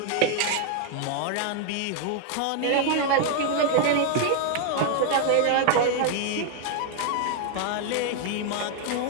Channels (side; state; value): both; different; correlation 0.00